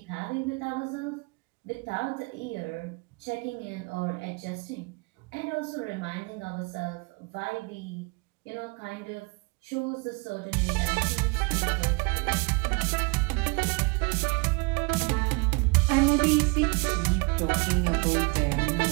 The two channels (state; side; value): quieter; left; 30.5 dB